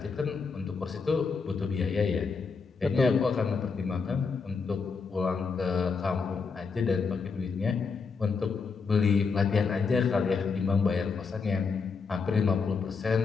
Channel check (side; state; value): right; quieter; 5.0 dB